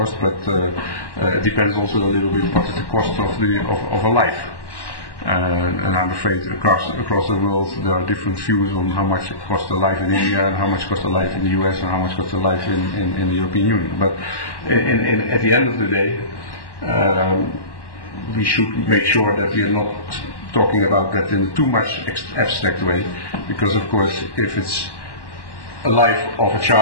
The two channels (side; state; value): right; late; 1.1 ms